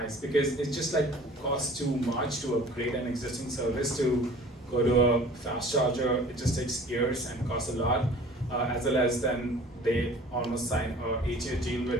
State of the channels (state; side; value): normal; both; correlation 0.47